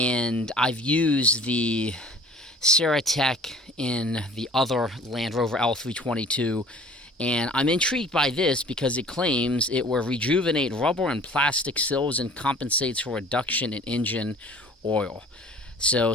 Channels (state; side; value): normal; both; correlation 0.48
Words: I've used the Ceratec in the other Land Rover L322, and I'm intrigued by this because it claims it will rejuvenate rubber and plastic sills and compensates for reduction in engine oil.